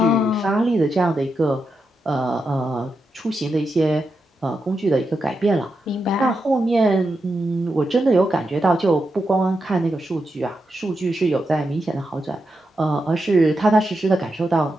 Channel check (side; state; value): both; normal; correlation 0.86